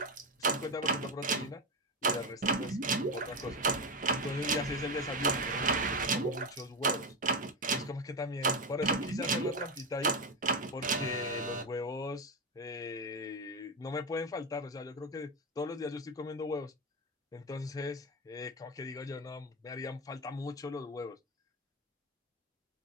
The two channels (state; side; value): normal; both; correlation 0.14